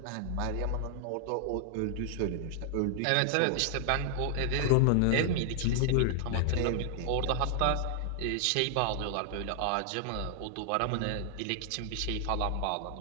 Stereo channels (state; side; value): different; both; correlation 0.00